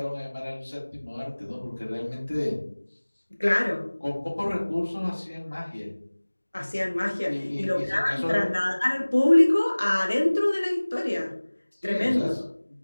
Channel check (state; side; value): inverted; both; correlation -1.00